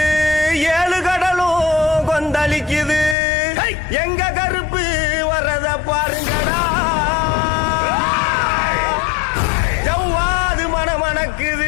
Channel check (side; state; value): right; drops out; at 3.2 s